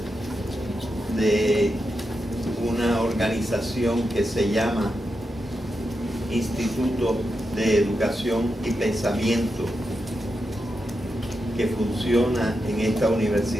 de una organización que se llama Instituto de Educación y Pensamiento, que funciona en esta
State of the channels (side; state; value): both; normal; correlation 0.87